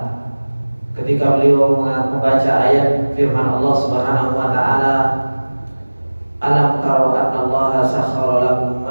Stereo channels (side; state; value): both; inverted; correlation -1.00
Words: ketika beliau membaca ayat firman Allah Subhanahu wa taala, alam taru anna Allah sakhkhara lakum